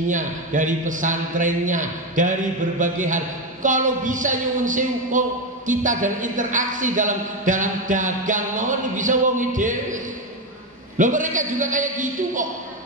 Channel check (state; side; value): normal; both; correlation 0.12